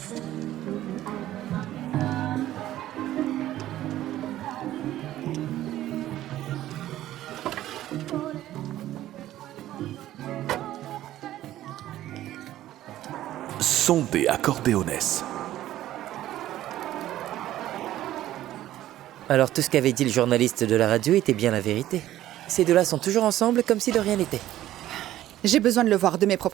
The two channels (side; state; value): left; quieter; 13.7 dB